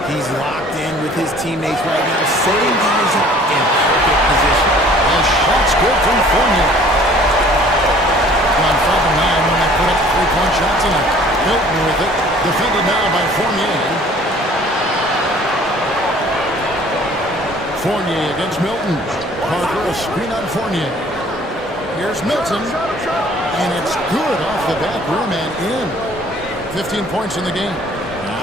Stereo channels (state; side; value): normal; both; correlation 0.53